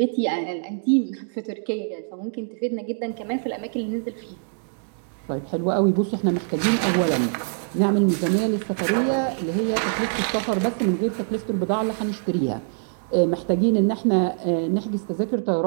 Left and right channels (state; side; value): silent; left; digital silence